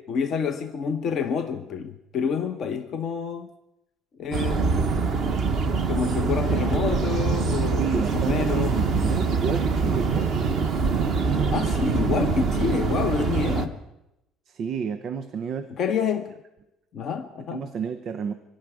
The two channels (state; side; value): normal; both; correlation 0.52